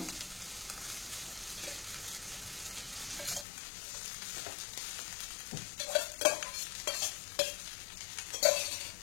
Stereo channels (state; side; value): drops out; right; at 3.5 s